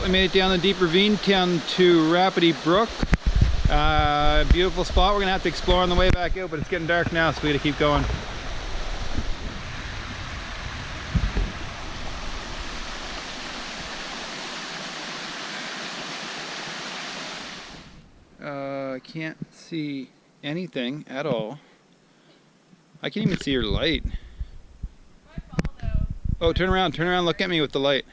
we made it down the deep ravine down to Rapidy Brook. Beautiful spot. We're gonna have to explore on the way back out, but it's getting dark now, so we gotta keep going. I can't see anything at all. I can't even see your light. Oh, turn around, look at me with the light.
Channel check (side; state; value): both; identical; correlation 1.00